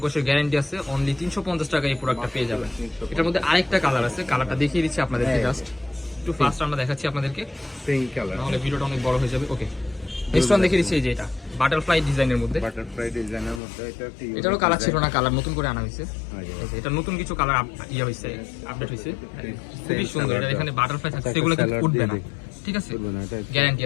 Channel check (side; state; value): right; drops out; at 13.6 s